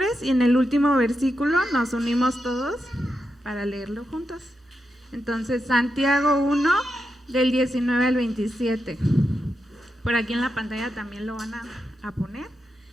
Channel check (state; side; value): normal; both; correlation 0.87